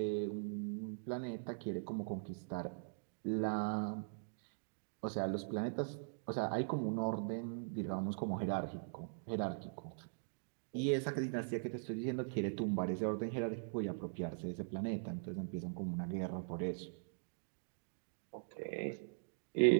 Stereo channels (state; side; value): silent; left; digital silence